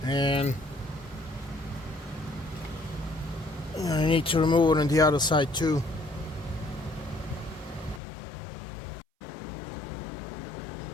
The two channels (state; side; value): drops out; right; at 8.0 s